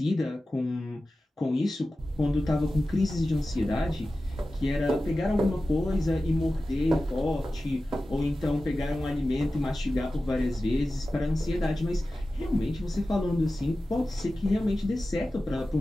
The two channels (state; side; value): normal; both; correlation 0.94